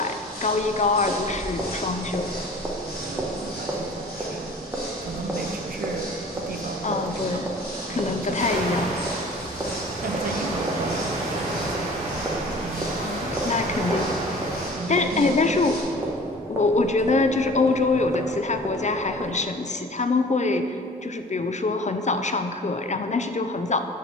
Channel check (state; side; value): normal; both; correlation 0.46